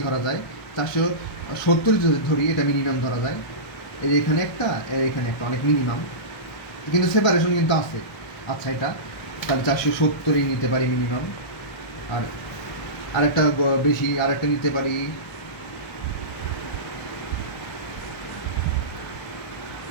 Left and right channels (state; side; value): late; right; 1.3 ms